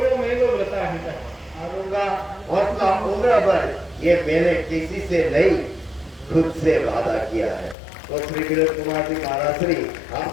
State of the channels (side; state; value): right; drops out; at 7.8 s